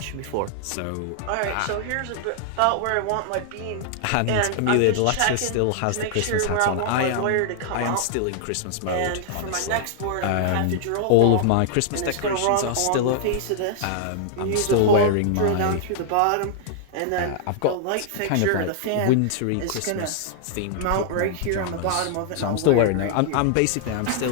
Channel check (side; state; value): both; different; correlation -0.01